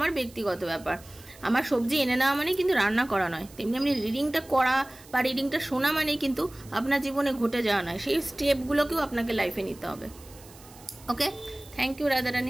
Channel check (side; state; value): right; noise; hiss, 22 dB below the sound